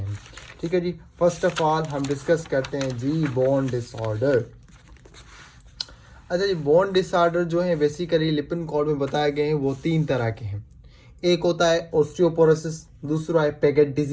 ठीक है जी। फर्स्ट ऑफ ऑल हम डिस्कस करते हैं जी बोन डिसऑर्डर। अच्छा जी, बोन डिसऑर्डर जो है बेसिकली लिपिन कोड में बताए गए हैं वो तीन तरह के हैं। एक होता है ऑस्टियोपोरोसिस, दूसरा है पेगेट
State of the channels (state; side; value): identical; both; correlation 1.00